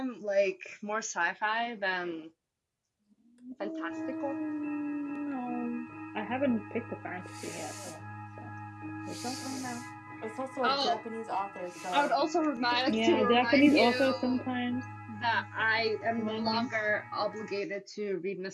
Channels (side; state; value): both; identical; correlation 1.00